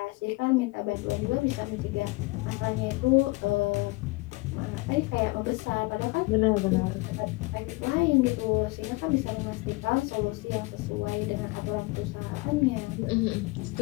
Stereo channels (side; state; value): right; quieter; 24.4 dB